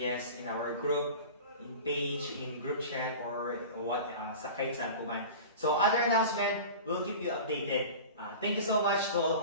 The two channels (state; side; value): inverted; both; correlation -0.34